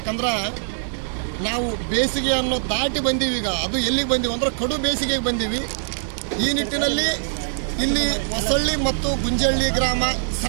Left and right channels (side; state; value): left; silent; digital silence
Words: ನಾವು ಬೇಸಿಗೆಯನ್ನು ದಾಟಿ ಬಂದೀವಿ. ಈಗ ಅದು ಎಲ್ಲಿಗೆ ಬಂದೀವಿ ಅಂದ್ರೆ ಕಡು ಬೇಸಿಗೆಗೆ ಬಂದೀವಿ. ಈ ನಿಟ್ಟಿನಲ್ಲಿ ಇಲ್ಲಿ ಹೊಸಳ್ಳಿ ಮತ್ತು ಗುಂಜಳ್ಳಿ ಗ್ರಾಮ